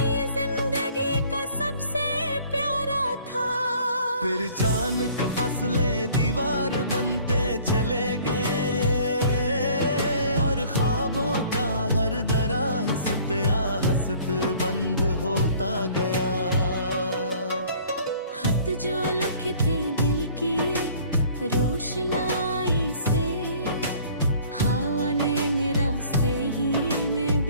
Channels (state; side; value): inverted; both; correlation -0.54